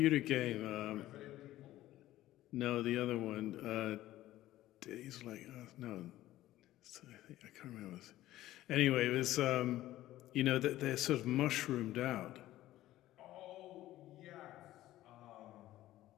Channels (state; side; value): quieter; right; 15.0 dB